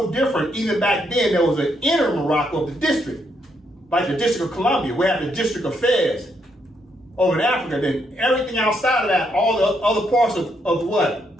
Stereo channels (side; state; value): both; normal; correlation 0.76